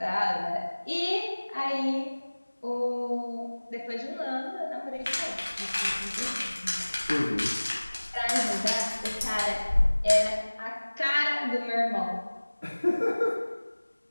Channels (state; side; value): inverted; both; correlation -1.00